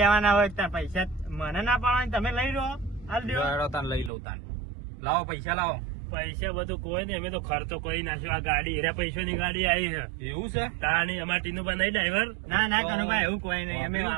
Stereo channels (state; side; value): drops out; left; at 4.1 s